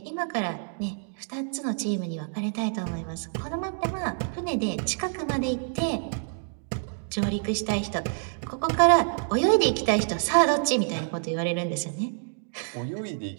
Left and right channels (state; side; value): silent; left; digital silence